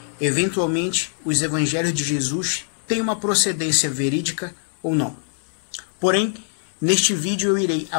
eventualmente, os evangelhos de Jesus têm uma procedência verídica ou não. Porém, neste vídeo eu irei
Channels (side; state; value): right; silent; 64 dB below the other